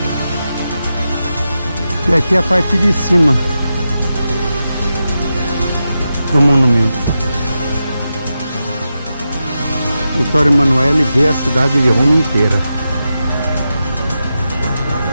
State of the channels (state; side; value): inverted; both; correlation -0.89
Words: E aqui é a parte de cima do monumento. Vittorio Emanuele vê a cidade de Roma inteira.